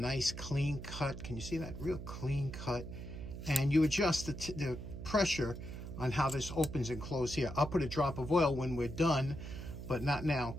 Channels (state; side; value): noise; right; hum, 9 dB below the sound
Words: clean cut. Can you see that? Real clean cut. And you adjust the pressure on how this opens and closes here. I'll put a drop of oil when we're done, but not now.